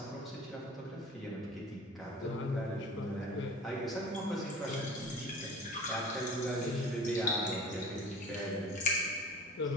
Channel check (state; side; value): normal; both; correlation 0.41